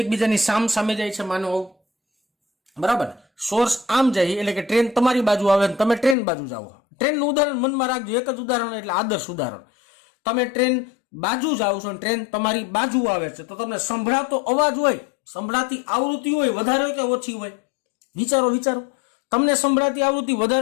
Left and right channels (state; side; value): drops out; right; at 6.2 s